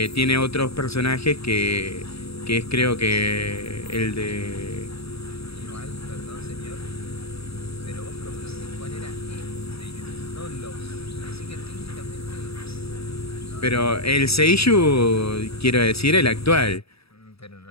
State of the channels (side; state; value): right; late; 0.77 ms